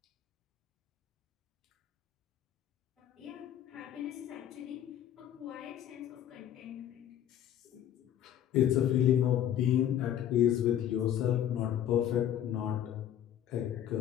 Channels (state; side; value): quieter; right; 10.6 dB